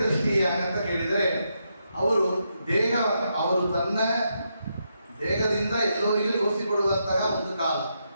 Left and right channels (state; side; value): inverted; both; correlation -0.82